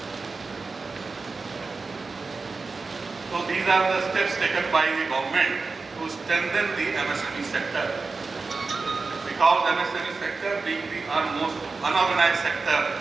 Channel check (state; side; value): quieter; left; 4.2 dB